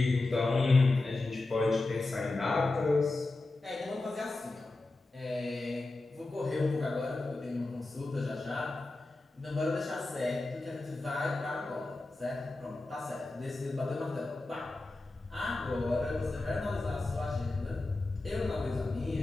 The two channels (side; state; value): right; quieter; 3.1 dB